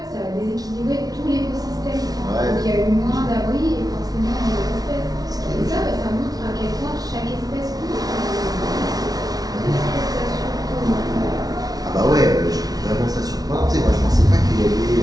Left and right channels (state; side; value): late; left; 0.18 ms